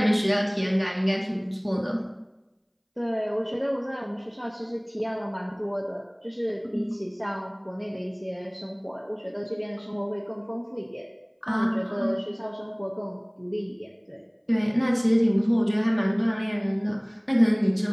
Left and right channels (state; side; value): identical; both; correlation 1.00